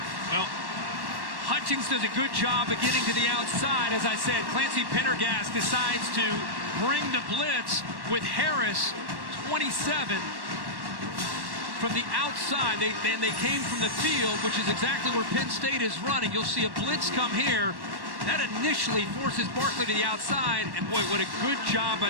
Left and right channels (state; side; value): late; left; 1.1 ms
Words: Well, Hutchings does a good job of getting to the outside. As I said, Clancy Pendergast decides to bring the blitz with Harris, 27, from the outside. They came from the field, which is exactly where Penn State is running. You'll see a blitz come here. That initially forces Barkley to the outside, and boy, what a good job by